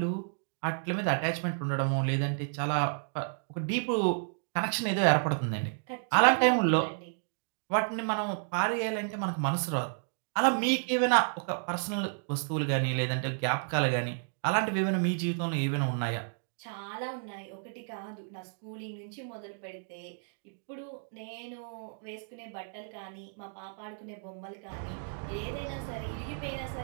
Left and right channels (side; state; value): left; silent; digital silence